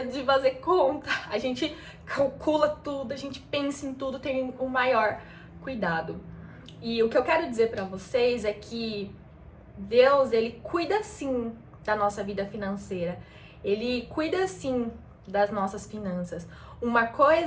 de fazer conta. A gente calcula tudo, a gente pensa em tudo, tem o maior cuidado. E o que eu quero dizer pra vocês é que Deus, Ele cuida sim da nossa vida financeira. Ele cuida sim das nossas finanças. Uma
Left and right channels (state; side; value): identical; both; correlation 1.00